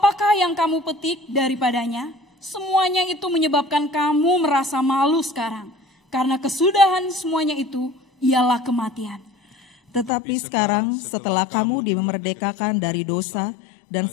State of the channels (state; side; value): drops out; right; at 10.1 s